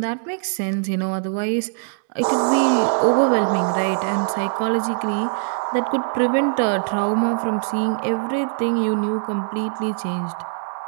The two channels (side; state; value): left; silent; digital silence